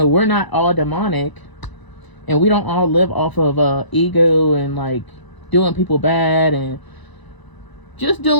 we're not all demonic, and we don't all live off of ego and like doing people bad and just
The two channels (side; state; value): right; late; 1.0 ms